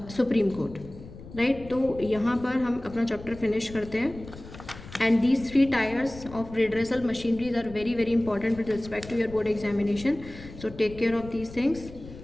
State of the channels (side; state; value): left; noise; rumble, 16 dB below the sound